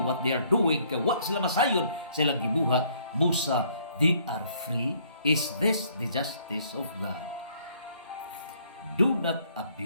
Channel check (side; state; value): both; inverted; correlation -0.64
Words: what they are doing. Kaya wa sila masayon silang gibuhat, busa they are free. Is this the justice of God? Do not